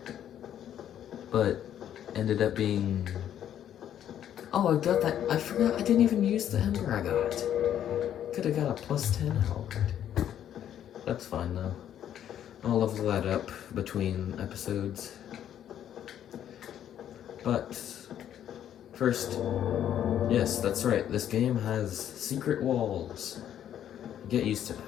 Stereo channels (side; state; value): right; quieter; 10.4 dB